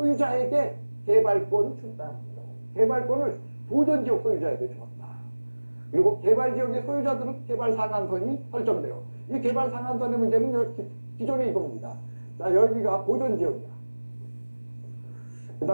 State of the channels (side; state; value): both; inverted; correlation -1.00